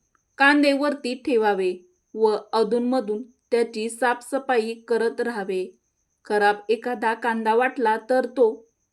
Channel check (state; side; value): identical; both; correlation 1.00